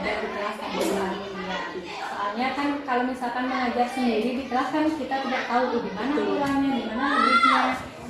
di kelas sama Bu Ari. Soalnya kan kalau misalkan mengajar sendiri di kelas kan kita tidak tahu di mana kurangnya, di mana lebihnya.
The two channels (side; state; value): both; identical; correlation 1.00